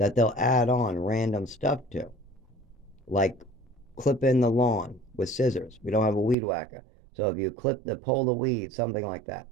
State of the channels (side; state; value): left; drops out; at 6.4 s